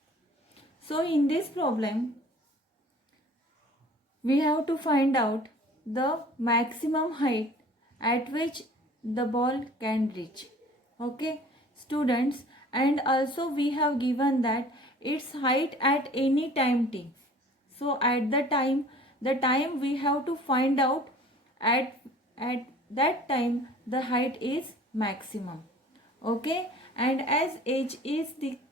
So in this problem we have to find out the maximum height at which the ball can reach. Okay students, and also we have given that its height at any time t. So at the time we have to find out at that time the height is maximum. Okay, and as h is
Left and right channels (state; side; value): normal; both; correlation 0.48